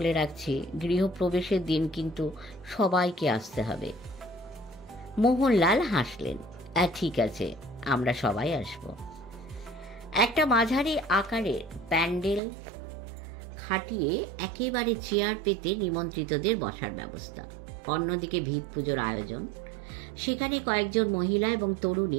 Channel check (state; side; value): drops out; left; at 12.4 s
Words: রাখছি, গৃহপ্রবেশের দিন কিন্তু সবাইকে আসতে হবে। মোহনলাল হাসলেন, ঠিক আছে, আমরা সবাই আসব। একটা মাঝারি আকারের প্যান্ডেল খাটিয়ে একেবারে চেয়ার পেতে নিমন্ত্রিতদের বসার ব্যবস্থা। অন্যদিকে ভিত পুজোর আয়োজন। সেখানে কয়েকজন মহিলা এবং